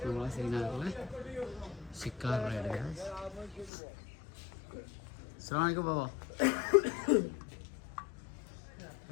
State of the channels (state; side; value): drops out; right; at 3.7 s